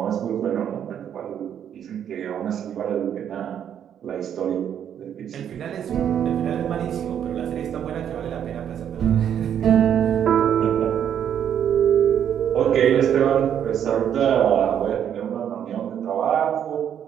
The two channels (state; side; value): quieter; left; 9.2 dB